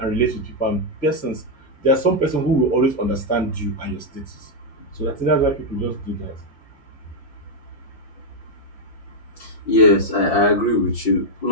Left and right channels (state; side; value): late; right; 5.9 ms